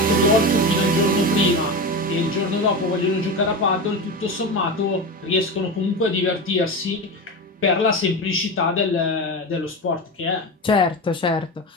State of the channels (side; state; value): both; normal; correlation 0.22